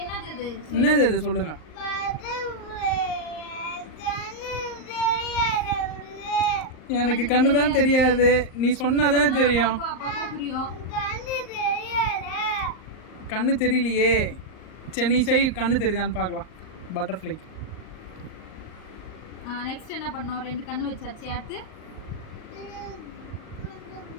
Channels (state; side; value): late; right; 38 ms